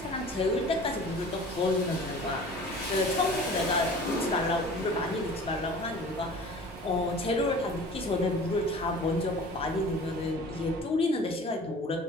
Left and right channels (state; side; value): normal; both; correlation 0.43